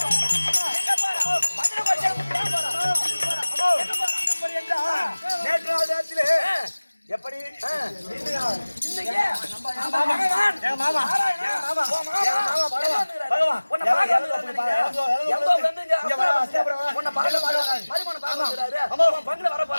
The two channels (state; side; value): inverted; both; correlation -1.00